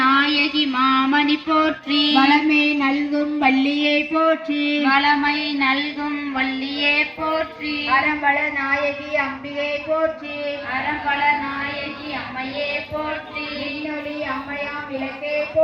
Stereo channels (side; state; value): both; identical; correlation 1.00